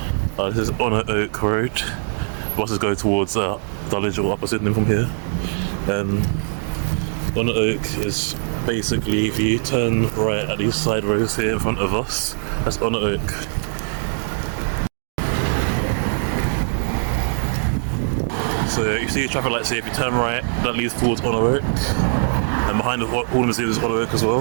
This is Honor Oak Road. Buses go towards Dulwich or Upper Sydenham from here. Honor Oak is basically, if you turn right at these side roads here in front of us, that's Honor Oak. So you see the traffic lights here, if you turn right, that leads towards Honor Oak. And behind the Horniman's Museum is Honor Oak as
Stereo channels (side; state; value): left; silent; digital silence